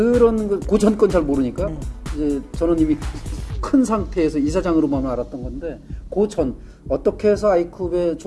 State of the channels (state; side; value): identical; both; correlation 1.00